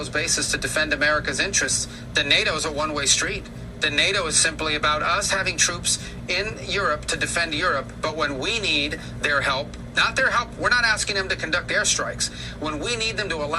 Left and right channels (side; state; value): both; identical; correlation 1.00